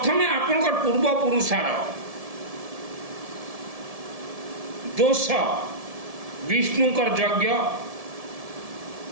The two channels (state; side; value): late; left; 1.7 ms